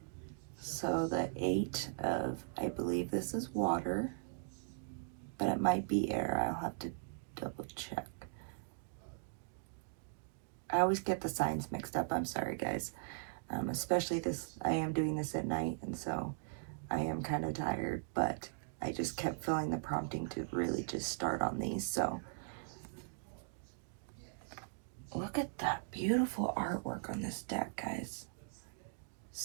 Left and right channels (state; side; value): silent; left; digital silence